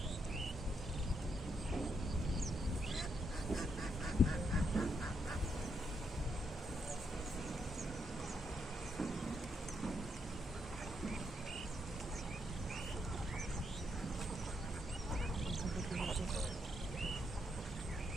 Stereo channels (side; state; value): both; normal; correlation 0.78